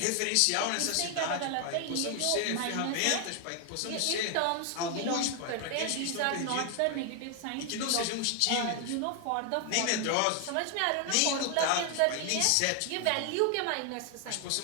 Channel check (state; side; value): different; both; correlation 0.00